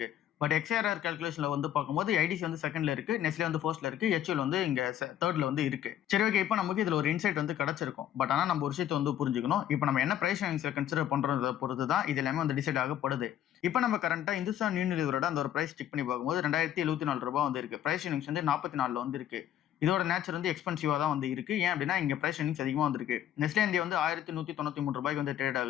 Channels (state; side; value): quieter; right; 11.2 dB